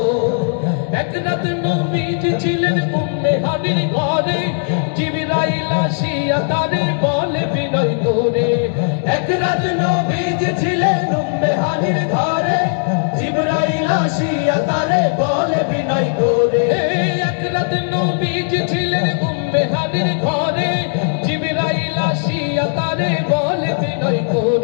এক রাত নবীজি ছিলেন উম্মে হানির ঘরে, জিবরাইল আসিয়া তারে বলে বিনয় করে। এক রাত নবীজি ছিলেন উম্মে হানির ঘরে, জিবরাইল আসিয়া তারে বলে বিনয় করে। এক রাত নবীজি ছিলেন উম্মে হানির ঘরে, জিবরাইল আসিয়া তারে বলে বিনয়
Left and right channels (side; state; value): right; silent; digital silence